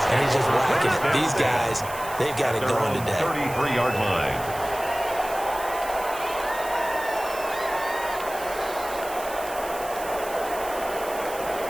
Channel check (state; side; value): noise; right; hiss, 13 dB below the sound